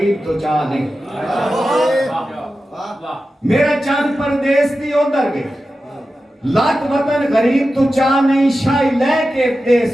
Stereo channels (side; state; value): both; normal; correlation 0.93